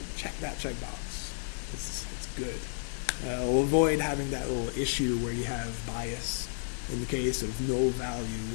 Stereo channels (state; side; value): silent; right; 55 dB below the other